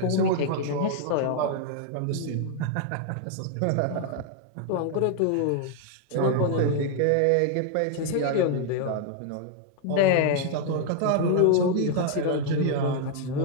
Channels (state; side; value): different; both; correlation 0.00